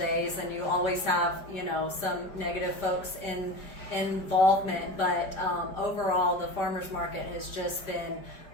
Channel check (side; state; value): right; late; 5.1 ms